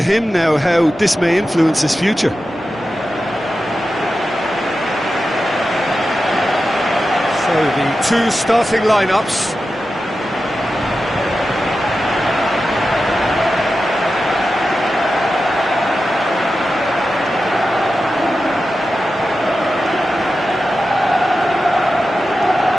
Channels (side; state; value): both; normal; correlation 0.92